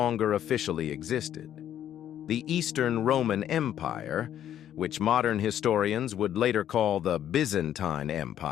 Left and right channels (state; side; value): quieter; right; 10.8 dB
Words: officially existed. The Eastern Roman Empire, which modern historians would later call the Byzantine